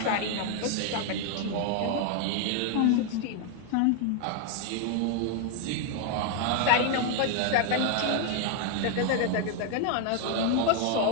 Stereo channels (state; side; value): different; both; correlation 0.00